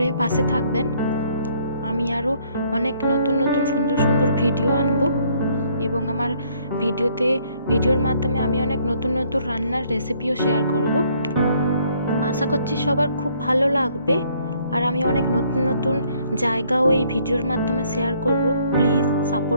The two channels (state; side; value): inverted; both; correlation -0.65